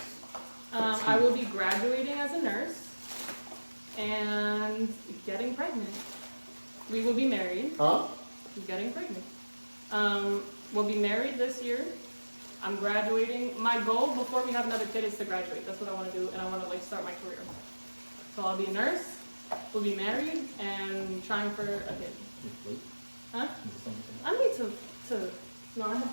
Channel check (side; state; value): both; inverted; correlation -1.00